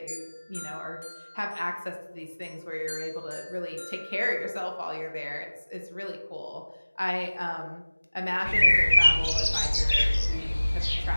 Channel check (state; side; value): inverted; both; correlation -1.00